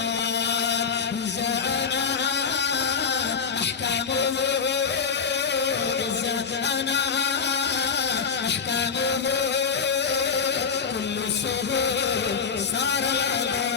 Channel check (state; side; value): quieter; right; 6.0 dB